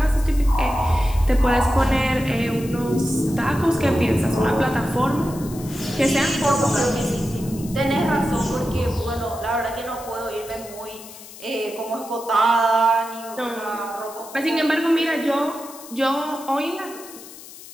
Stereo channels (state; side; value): noise; left; hiss, 17 dB below the sound